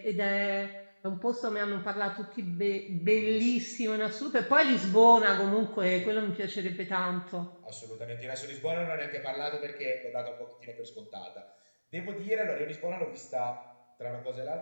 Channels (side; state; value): both; inverted; correlation -1.00